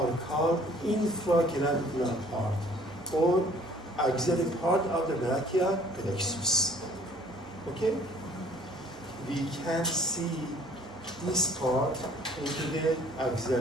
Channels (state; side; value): normal; both; correlation 0.55